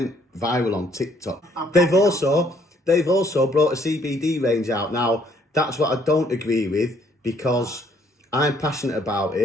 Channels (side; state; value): both; normal; correlation 0.65